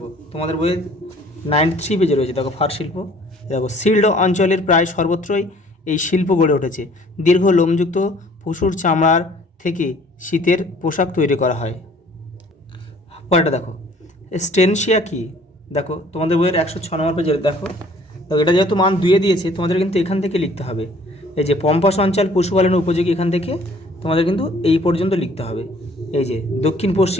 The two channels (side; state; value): both; normal; correlation 0.56